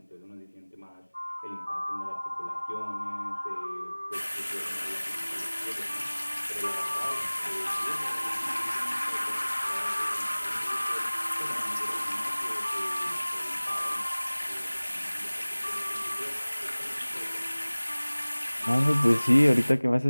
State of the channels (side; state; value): both; inverted; correlation -1.00